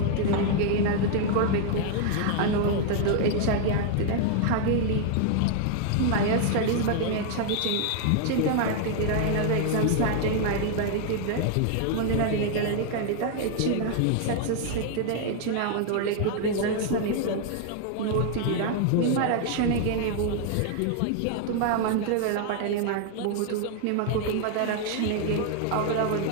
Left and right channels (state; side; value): different; both; correlation 0.00